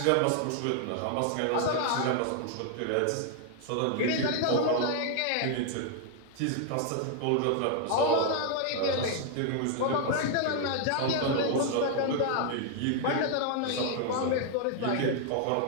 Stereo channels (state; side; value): different; both; correlation 0.00